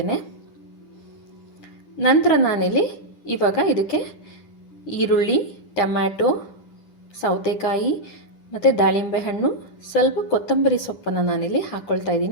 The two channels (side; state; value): right; late; 10 ms